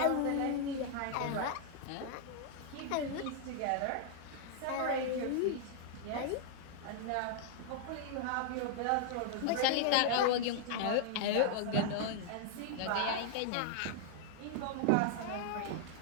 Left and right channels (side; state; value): both; different; correlation -0.01